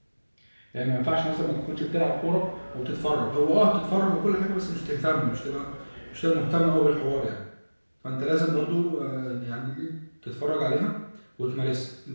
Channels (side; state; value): both; inverted; correlation -1.00